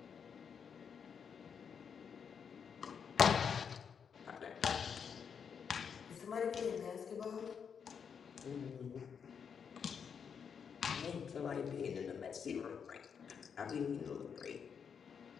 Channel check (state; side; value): quieter; right; 6.9 dB